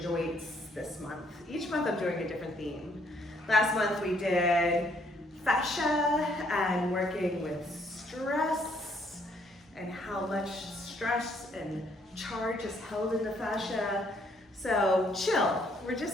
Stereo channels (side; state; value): both; normal; correlation 0.68